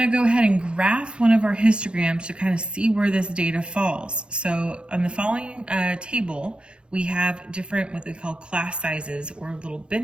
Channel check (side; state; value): left; late; 0.055 ms